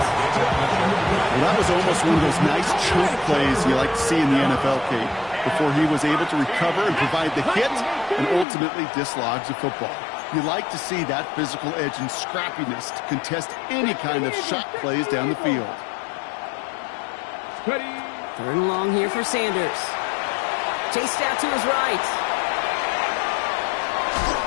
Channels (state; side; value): drops out; right; at 8.5 s